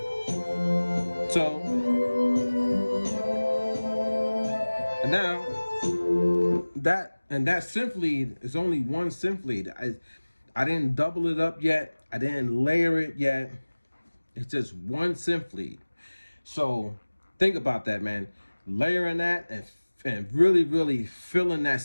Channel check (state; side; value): inverted; both; correlation -1.00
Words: So, and now that synth lead is only one synth lead. I didn't double it up yet. I didn't layer it yet. It's just one synth lead. So think about that, man. Layering that and really, really filling that